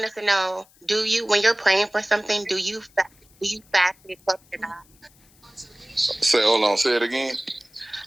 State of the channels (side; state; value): left; noise; hiss, 30 dB below the sound